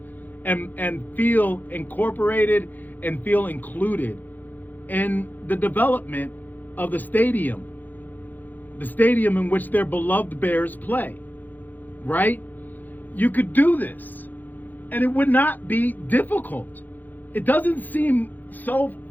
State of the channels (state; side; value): late; right; 0.085 ms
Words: and feel incorporated and feel included in the development of the stadium in which their beloved Bears play, right? You could do this, and it would not be difficult. It doesn't seem so